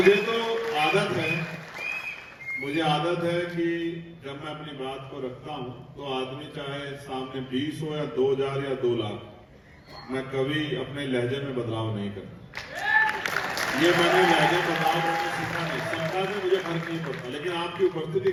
मुझे आदत है कि जब मैं अपनी बात को रखता हूं तो आदमी चाहे सामने 20 हो या 2000 या 2 लाख, मैं कभी अपने लहजे में बदलाव नहीं करता। ये मैंने लहजे बदलाव करना सीखा नहीं, संख्या में मुझे फर्क नहीं पड़ता, लेकिन आपकी उपस्थिति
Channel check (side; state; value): both; identical; correlation 1.00